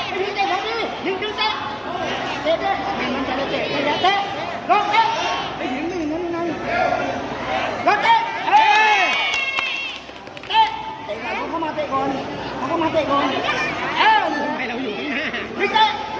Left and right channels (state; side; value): identical; both; correlation 1.00